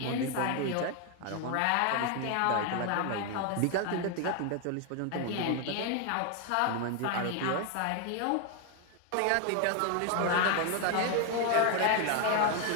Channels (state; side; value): different; both; correlation 0.01